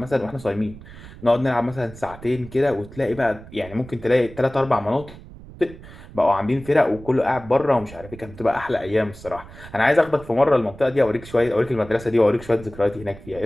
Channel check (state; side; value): noise; right; rumble, 17 dB below the sound